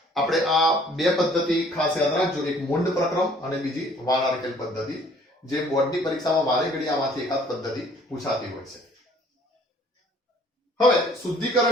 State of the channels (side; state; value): both; normal; correlation 0.57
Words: આપણે આ બે પદ્ધતિ ખાસ યાદ રાખજો, એક મુંડ પ્રક્રમ અને બીજી વાનાર્કેલ પદ્ધતિ, જે બોર્ડની પરીક્ષામાં વારે ઘડી આમાંથી એકાદ પદ્ધતિ પૂછાતી હોય છે. હવે